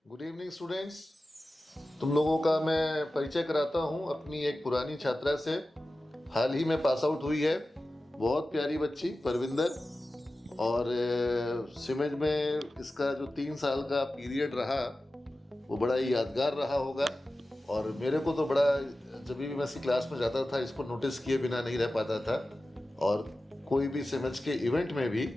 Good evening students. तुम लोगों का मैं परिचय कराता हूँ अपनी एक पुरानी छात्रा से। हाल ही में पास आउट हुई है, बहुत प्यारी बच्ची परविंदर। और सिमेज में इसका जो 3 साल का पीरियड रहा वो बड़ा ही यादगार रहा होगा। और मेरे को तो बड़ा, जब भी मैं इसकी क्लास में जाता था इसको नोटिस किए बिना नहीं रह पाता था। और कोई भी सिमेज के इवेंट में भी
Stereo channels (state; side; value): normal; both; correlation 0.95